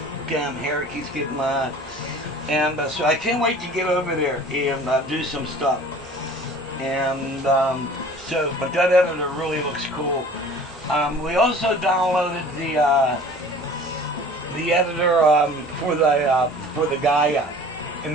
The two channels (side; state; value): both; normal; correlation 0.46